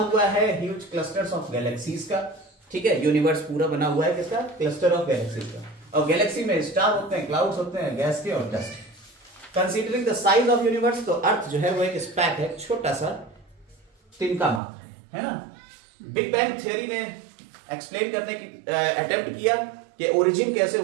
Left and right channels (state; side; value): drops out; left; at 14.6 s